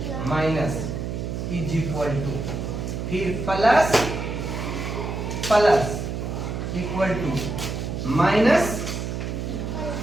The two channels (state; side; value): noise; right; hum, 4 dB below the sound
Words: minus is equal to, फिर plus plus equal to, minus